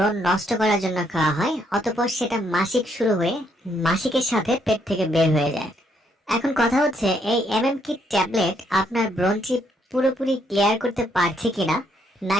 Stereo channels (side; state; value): both; normal; correlation 0.72